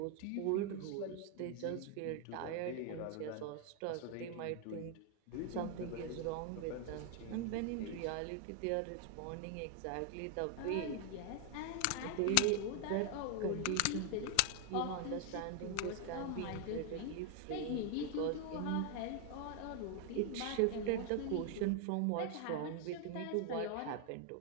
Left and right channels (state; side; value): different; both; correlation 0.00